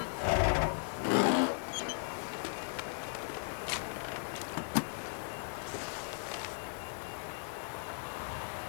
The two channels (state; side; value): silent; right; 53 dB below the other